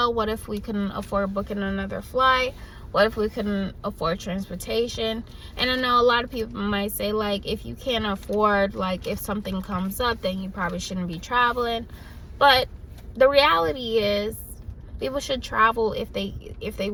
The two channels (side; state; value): both; identical; correlation 1.00